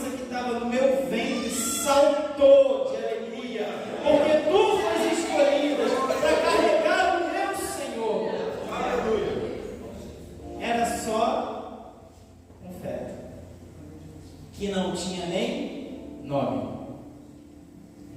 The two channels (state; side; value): identical; both; correlation 1.00